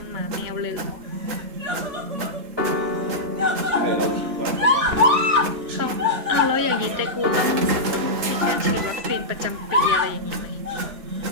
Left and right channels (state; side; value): late; left; 3.8 ms